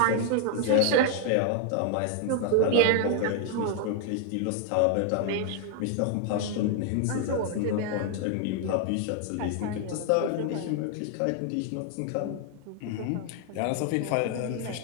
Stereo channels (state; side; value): different; both; correlation 0.00